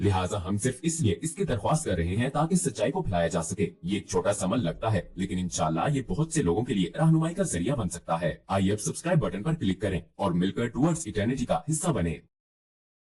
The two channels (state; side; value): identical; both; correlation 1.00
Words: हम सिर्फ इसलिए इसकी दरख्वास्त कर रहे हैं ताकि सच्चाई को फैलाया जा सके। ये एक छोटा सा अमल लगता है, लेकिन इंशाल्लाह ये बहुत से लोगों के लिए रहनुमाई का जरिया बन सकता है। आइए अब सब्सक्राइब बटन पर क्लिक करें और मिलकर टुवर्ड्स इटर्निटी का हिस्सा बने।